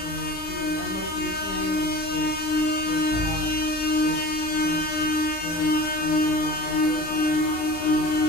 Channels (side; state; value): right; late; 36 ms